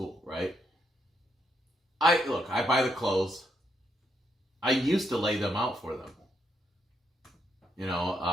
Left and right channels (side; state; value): both; normal; correlation 0.77